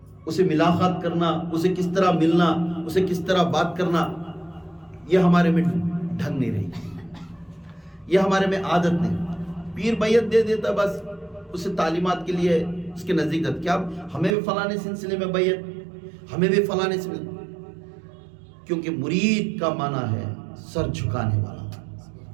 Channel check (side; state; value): left; drops out; at 14.4 s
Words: اسے ملاقات کرنا، اسے کس طرح ملنا، اسے کس طرح بات کرنا، یہ ہمارے میں ڈھنگ نہیں رہی، یہ ہمارے میں عادت نہیں۔ پیر بیعت دے دیتا بس اسے تعلیمات کے لیے اس کے نزدیک جاتا، کیا ہمیں بھی فلانے سلسلے میں بیعت، ہمیں بھی فلانے سے، کیونکہ مرید کا معنی ہے سر جھکانے والا،